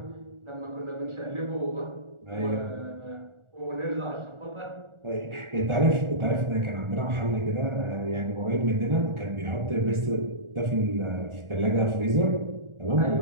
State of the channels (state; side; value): late; left; 1.4 ms